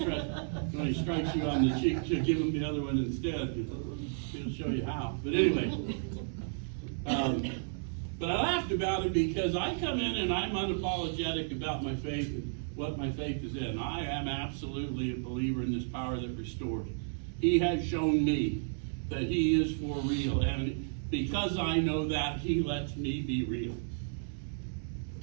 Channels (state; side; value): silent; left; 56 dB below the other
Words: threat when he strikes you on the cheek, to give him the other one instead. He'll show you how. But anyway, but I laughed about it because I come in and I'm unapologetic about my faith and what my faith is in. I am absolutely a believer in this power that restores. He has shown me that He is for real, and because I know that, He lets me be real.